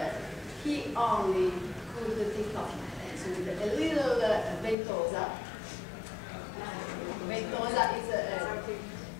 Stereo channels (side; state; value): right; drops out; at 4.8 s